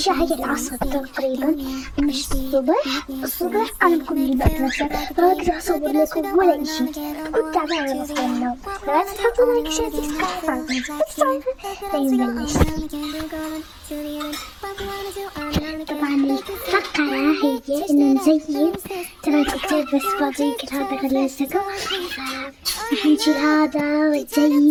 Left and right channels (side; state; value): both; identical; correlation 1.00